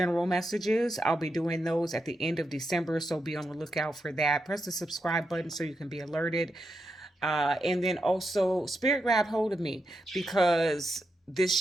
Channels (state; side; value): normal; both; correlation 0.85